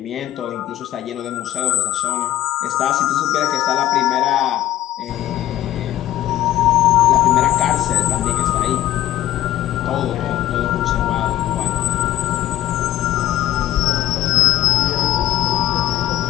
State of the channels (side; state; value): right; quieter; 13.7 dB